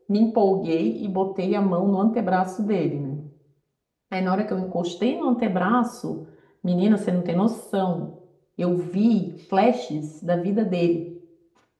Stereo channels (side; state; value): both; identical; correlation 1.00